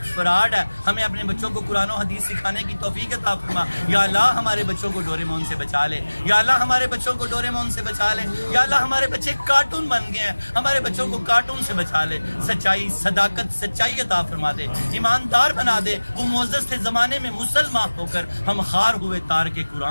فراڈ ہے, ہمیں اپنے بچوں کو قرآن و حدیث سکھانے کی توفیق عطا فرما. یا اللہ ہمارے بچوں کو ڈوریمون سے بچا لے. یا اللہ ہمارے بچوں کو ڈوریمون سے بچا لے. یا اللہ ہمارے بچے کارٹون بن گئے ہیں, ہمارے بچوں کو کارٹون سے بچا لے. سچائی صداقت سچائی عطا فرما دے, ایماندار بنا دے. وہ معزز تھے زمانے میں مسلمان ہو کر, ہم خار ہوئے تار کے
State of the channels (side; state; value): both; inverted; correlation -1.00